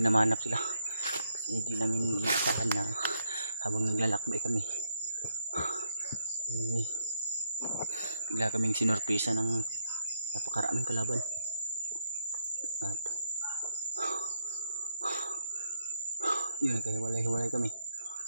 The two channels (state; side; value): inverted; both; correlation -0.78